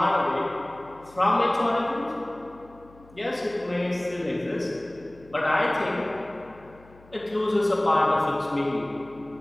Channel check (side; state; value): left; noise; hum, 25 dB below the sound